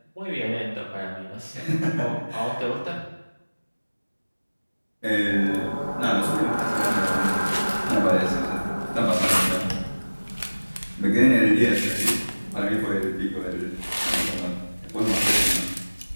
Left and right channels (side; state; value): both; inverted; correlation -1.00